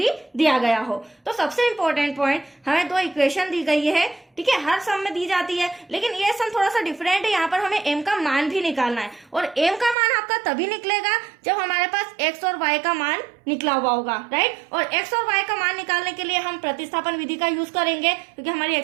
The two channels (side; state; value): left; drops out; at 10.0 s